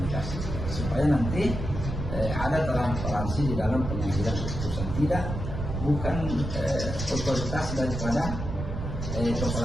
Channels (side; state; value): right; noise; rumble, 5 dB below the sound